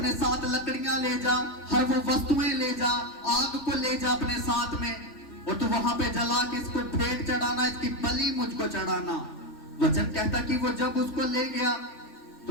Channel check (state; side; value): late; right; 3.4 ms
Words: साथ लकड़ियां ले जा, हर वो वस्तुएं ले जा, आग को ले जा अपने साथ में, और तू वहां पे जला के इसको भेंट चढ़ाना, इसकी बलि मुझको चढ़ाना। वचन कहता कि वो जब उसको ले गया